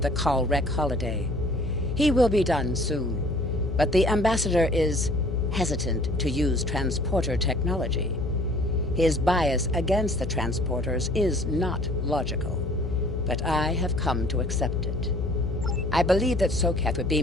the Kalrek holiday. He will be done soon, but the ambassador is hesitant to use transporter technology. His bias against the transporters is not logical, but I have come to accept it. I believe that Sokath would be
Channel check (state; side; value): noise; left; hum, 3 dB below the sound